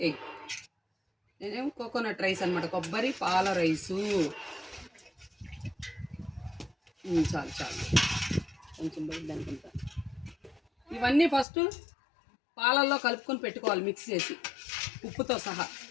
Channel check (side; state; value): right; drops out; at 11.5 s